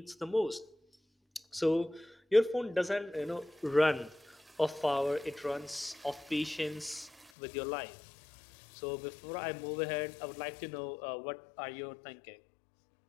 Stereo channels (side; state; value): right; drops out; at 7.3 s